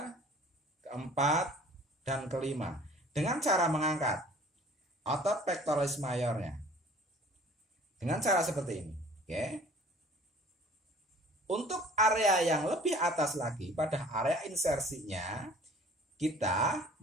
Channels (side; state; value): both; normal; correlation 0.50